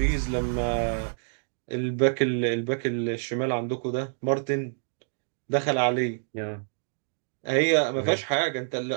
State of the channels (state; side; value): silent; left; digital silence